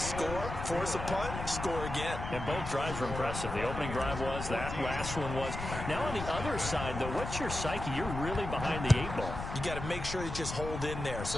force a punt, score again. And both drives were impressive. The opening drive was, that last one was. Now on the other side, though, what's your psyche? You're really behind the 8 ball. You got to make sure you just hold in there.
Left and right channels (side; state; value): left; noise; rumble, 6 dB below the sound